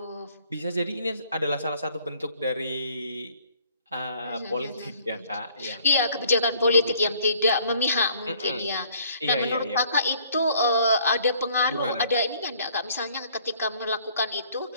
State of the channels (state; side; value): inverted; both; correlation -0.59